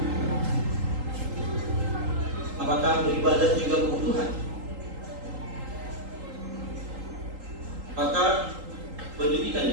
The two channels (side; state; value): left; late; 3.8 ms